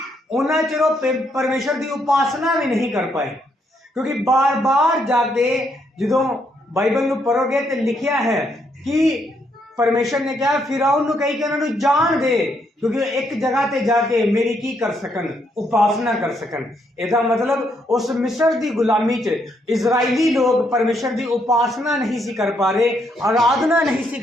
उन्ना चिर परमेश्वर की उपासना भी नहीं कर पाए। क्योंकि बार बार जाके जो बाइबल में पढ़ोगे तो लिखा है कि परमेश्वर ने कहा फिरौन नूं कही कि उन्होंने जान दे, क्योंकि एक जगह ते जाके मेरी की कर सकन, उपासना कर सकन। इसका मतलब उस मिस्र की गुलामी च इजराइली लोग परमेश्वर की उपासना नहीं सी कर पा रहे, आराधना नहीं सी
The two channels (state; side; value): normal; both; correlation 0.75